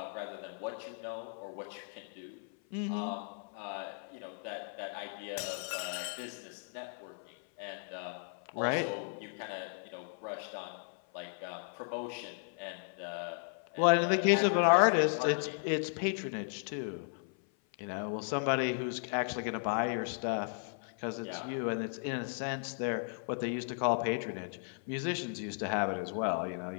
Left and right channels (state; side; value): silent; right; 54 dB below the other